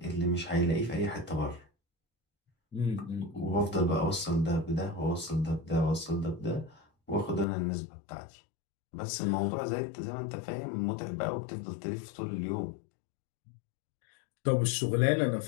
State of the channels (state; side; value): drops out; right; at 7.5 s